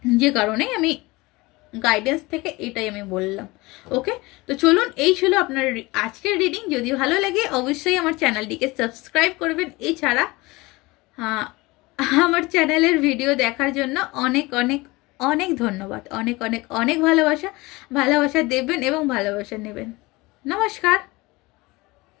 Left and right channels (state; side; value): quieter; right; 22.3 dB